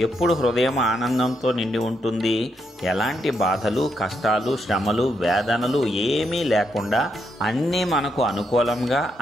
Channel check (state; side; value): normal; both; correlation 0.79